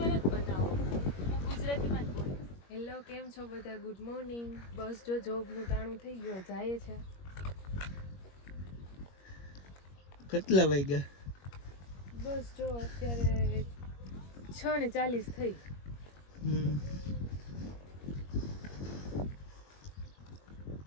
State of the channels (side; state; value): right; late; 21 ms